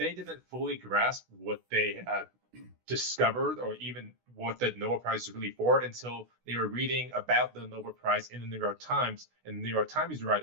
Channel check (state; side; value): late; left; 16 ms